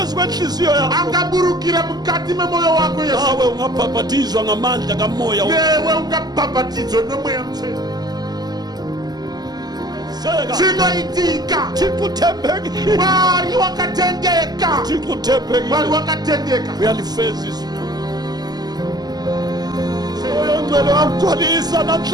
kwenhliziyo yakho angaburukira mkati memoyo wako Yesu nawe ungabhabhatizwa ngamandla kamoya wewe ungabhabhatizwa nomoya mtheni Chinoitika Chikuthembekile Wari wakatendeka Chikuthembekile Wari wakatendeka Uyalifeza izwi Oyongcwele wamgcwalisa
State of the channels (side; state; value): left; late; 0.20 ms